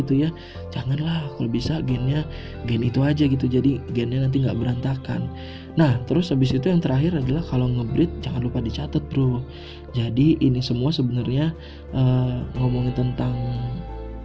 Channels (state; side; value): identical; both; correlation 1.00